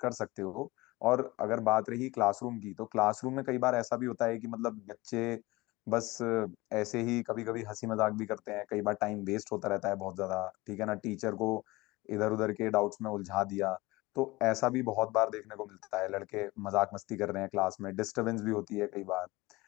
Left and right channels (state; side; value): quieter; right; 21.1 dB